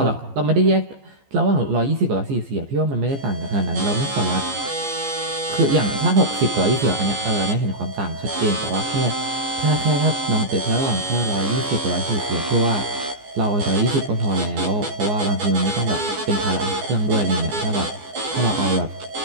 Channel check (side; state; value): left; late; 14 ms